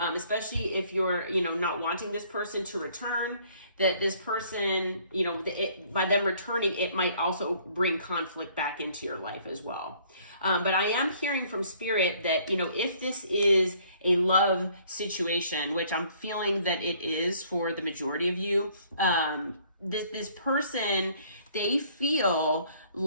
if you're, you know, not wanting this person to return, that this person, you know, by them returning, it might also bring conflict back into your life as well. But I am hearing from Spirit that, you know, if this is a love situation, which I'm feeling that it is for the majority of you, this person, they feel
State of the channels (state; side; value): inverted; both; correlation -0.60